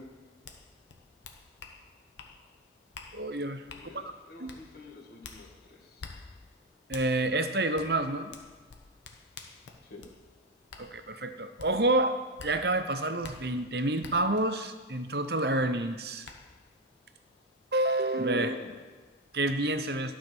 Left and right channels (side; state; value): both; normal; correlation 0.08